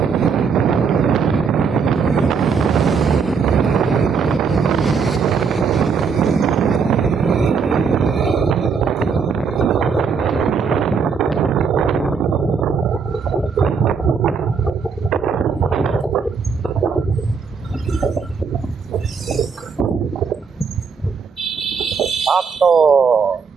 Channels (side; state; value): left; quieter; 5.6 dB